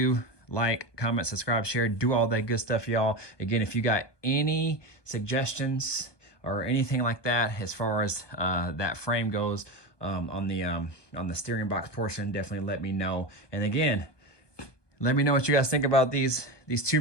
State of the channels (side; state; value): right; late; 1.2 ms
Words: Like, comment, subscribe, share, do all that good stuff, y'all. Again, if you got any suggestions or anything like that as far as that frame goes on the steering box portion, definitely let me know. And again, let me know what you guys think about these